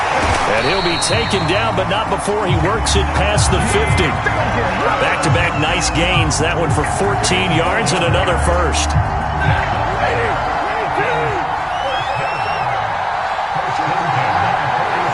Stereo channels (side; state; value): both; identical; correlation 1.00